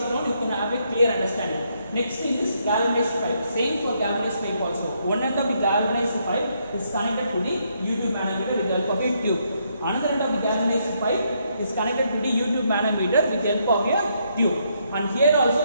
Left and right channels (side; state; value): both; inverted; correlation -0.75